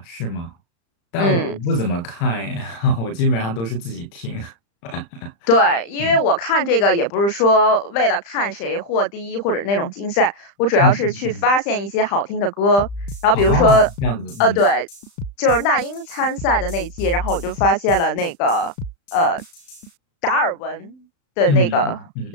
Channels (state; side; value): late; right; 35 ms